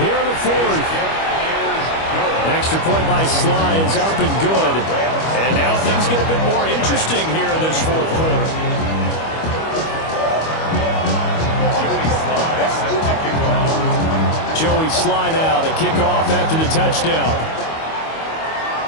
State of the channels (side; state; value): right; late; 25 ms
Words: in the 4th. Extra point by Sly is up and good. And now things get a bit more interesting here in this 4th quarter. Joey Sly now to kick off after the touchdown.